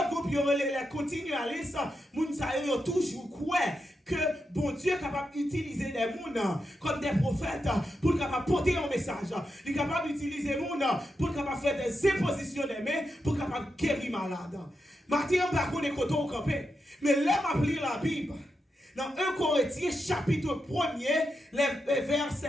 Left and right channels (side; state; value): both; normal; correlation 0.86